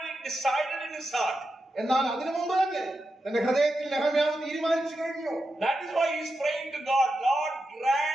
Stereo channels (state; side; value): normal; both; correlation 0.88